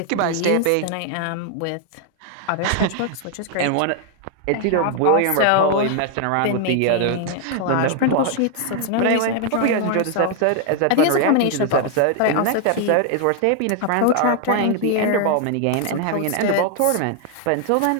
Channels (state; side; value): different; both; correlation 0.00